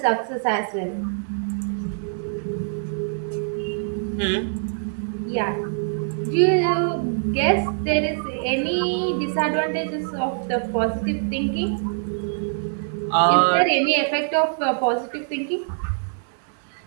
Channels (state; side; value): silent; left; 63 dB below the other